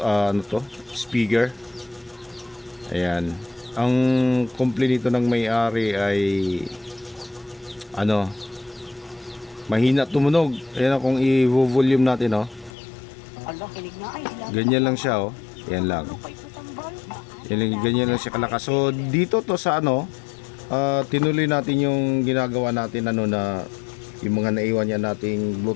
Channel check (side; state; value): right; drops out; at 12.7 s